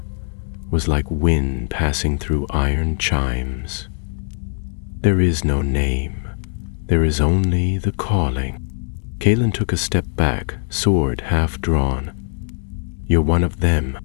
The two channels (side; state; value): right; silent; 58 dB below the other